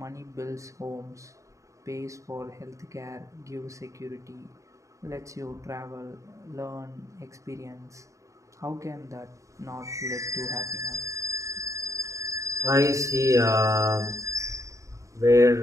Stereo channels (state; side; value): late; left; 0.15 ms